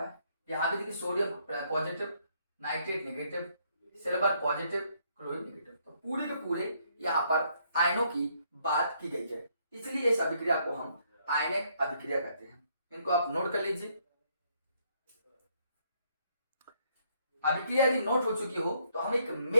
है। यहाँ भी देखिए sodium positive, nitrate negative, silver positive, chlorine negative. तो पूरे के पूरे यहाँ पर आयनों की बात की गई है, इसलिए इस अभिक्रिया को हम आयनिक अभिक्रिया कहते हैं। इनको आप नोट कर लीजिए। अभिक्रिया यदि नोट हो चुकी हो तो हम एक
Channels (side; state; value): both; inverted; correlation -0.70